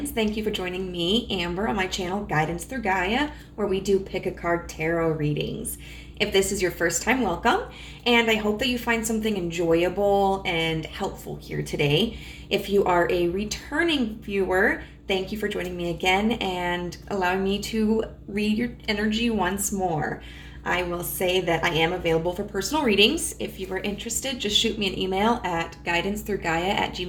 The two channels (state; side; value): identical; both; correlation 1.00